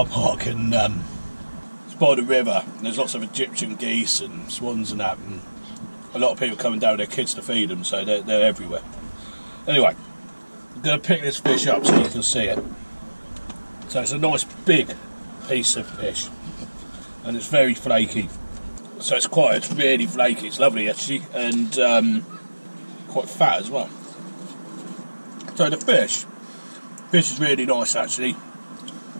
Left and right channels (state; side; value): inverted; both; correlation -1.00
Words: park, and it's by the river, and there's lots of Egyptian geese and swans and that, and a lot of people coming down with their kids to feed them, so they're everywhere. Anyway, I'm going to pick this fish up so you can see it. So it's a nice big piece of fish, and it's very flaky. So it's really flaky, it's lovely actually, and quite fat as well. So the fish is really nice actually.